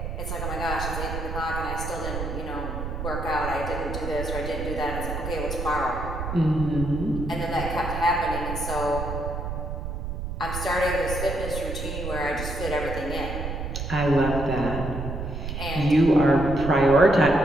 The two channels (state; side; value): noise; right; rumble, 5 dB below the sound